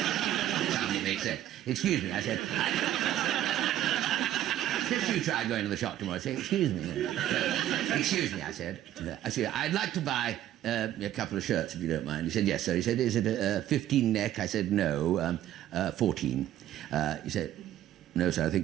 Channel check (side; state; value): left; quieter; 12.5 dB